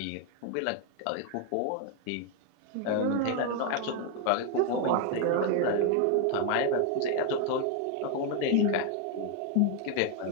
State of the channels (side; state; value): both; different; correlation 0.01